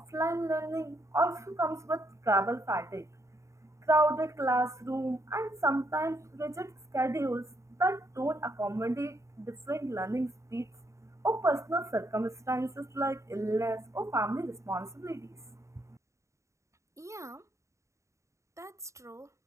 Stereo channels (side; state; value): left; late; 0.14 ms